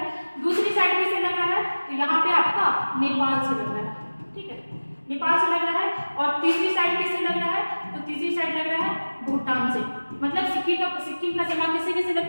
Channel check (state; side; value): inverted; both; correlation -1.00